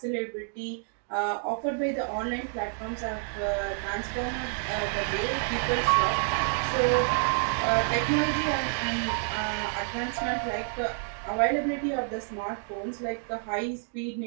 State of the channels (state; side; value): silent; left; 59 dB below the other